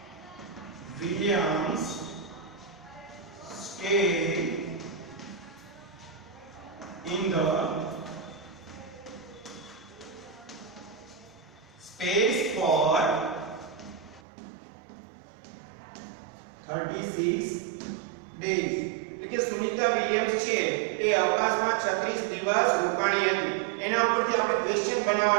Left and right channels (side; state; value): left; drops out; at 14.2 s